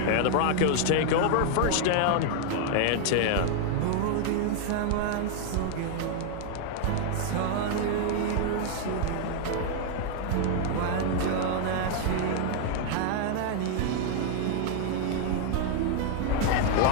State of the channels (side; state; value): both; different; correlation 0.00